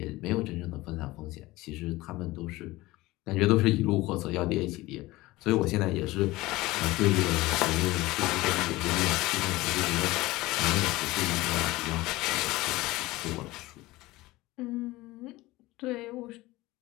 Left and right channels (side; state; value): right; quieter; 19.5 dB